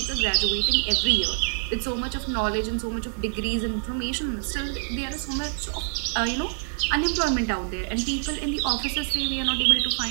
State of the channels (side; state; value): left; silent; digital silence